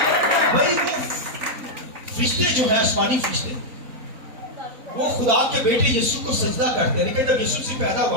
بھائی وہ فرشتے جو ہے آسمانی فرشتے وہ خدا کے بیٹے یسوع کو سجدہ کرتے ہیں. لیکن جب یسوع سے پیدا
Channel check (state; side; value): late; left; 3.9 ms